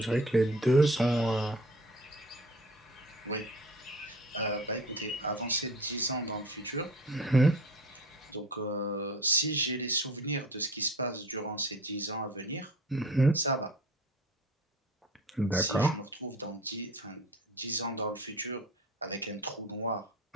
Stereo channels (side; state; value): both; normal; correlation 0.41